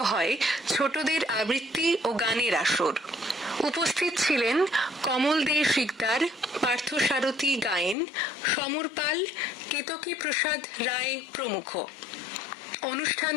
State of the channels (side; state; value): right; drops out; at 8.0 s